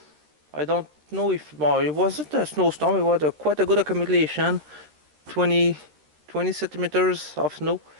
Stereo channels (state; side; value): late; left; 13 ms